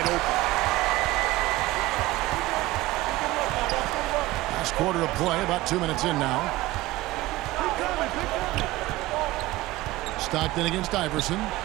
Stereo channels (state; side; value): quieter; left; 18.4 dB